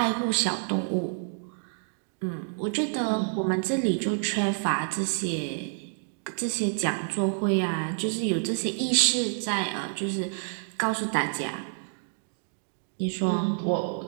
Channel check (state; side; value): silent; left; digital silence